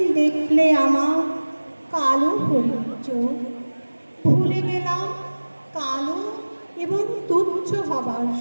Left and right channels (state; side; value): inverted; both; correlation -1.00